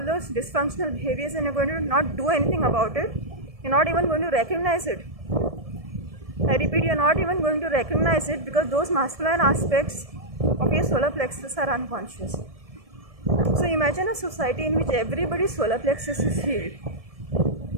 those dysfunctional behaviors and you're going to not do anything about it. You're not even going to recognize it. I repeat, you're not even going to recognize it, because those masculine aspects of your solar plexus are unconscious. So imagine a society in which everybody's solar plexus is healed.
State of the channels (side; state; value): left; late; 1.7 ms